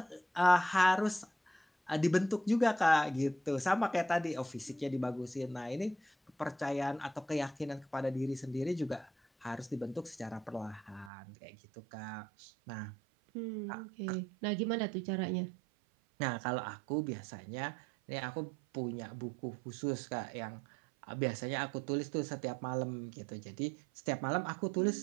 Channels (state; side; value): drops out; left; at 11.1 s